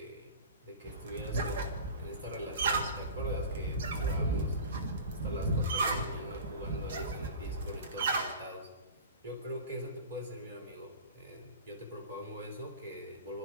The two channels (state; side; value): inverted; both; correlation -0.36